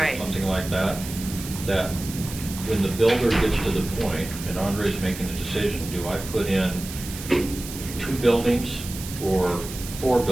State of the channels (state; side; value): noise; right; hiss, 11 dB below the sound